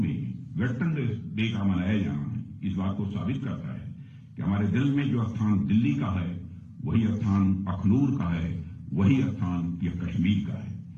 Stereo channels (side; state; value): both; identical; correlation 1.00